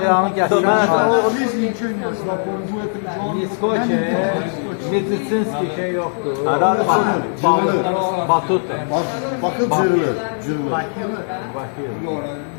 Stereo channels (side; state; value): right; silent; digital silence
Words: yağını gətirmək. Niskoçe, medisinski şey yoxdur. Arada Batut. Bakın cırılır, cırılır.